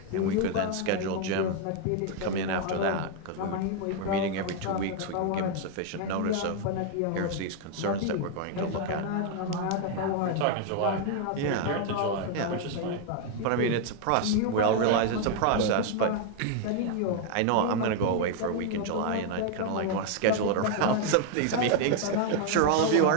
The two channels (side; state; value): both; different; correlation 0.00